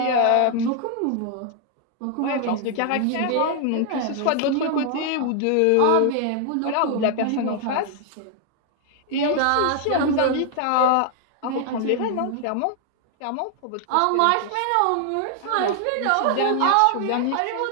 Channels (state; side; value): different; both; correlation 0.00